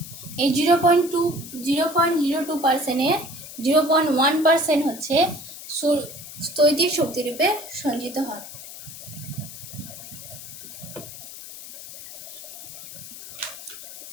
এই 0.02%-এর 0.1% হচ্ছে স্থৈতিক শক্তিরূপে সঞ্চিত হয়।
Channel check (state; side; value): noise; left; hiss, 13 dB below the sound